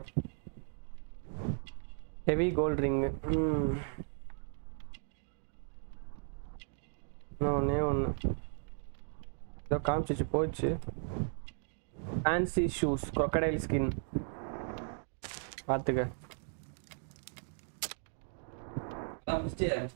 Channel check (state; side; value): silent; left; digital silence